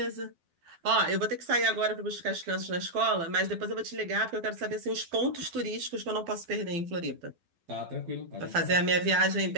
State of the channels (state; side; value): late; left; 12 ms